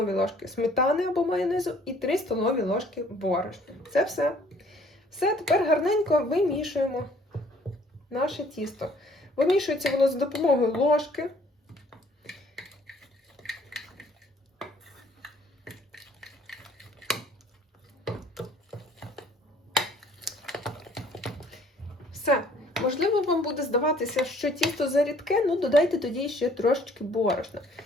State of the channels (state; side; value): normal; both; correlation 0.58